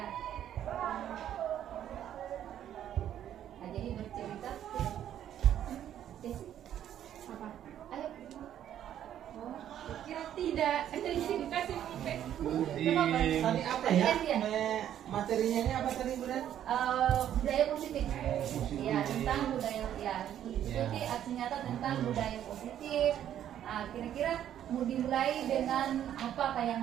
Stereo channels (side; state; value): left; quieter; 10.7 dB